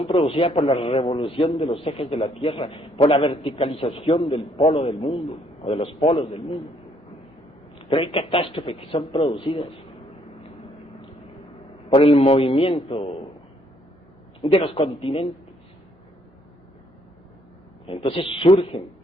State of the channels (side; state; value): both; normal; correlation 0.67